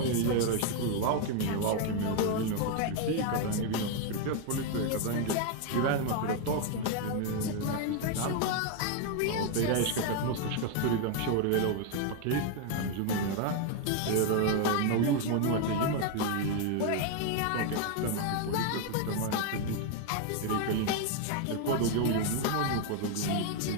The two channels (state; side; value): different; both; correlation 0.01